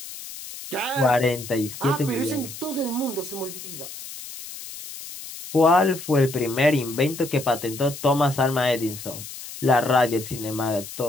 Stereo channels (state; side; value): noise; left; hiss, 12 dB below the sound